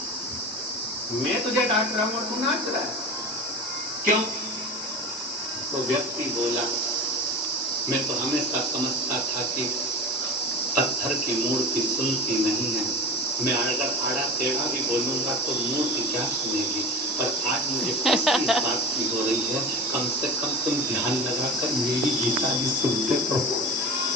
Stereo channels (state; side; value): normal; both; correlation 0.31